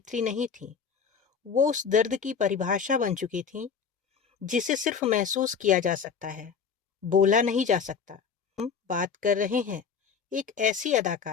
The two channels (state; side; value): quieter; right; 6.4 dB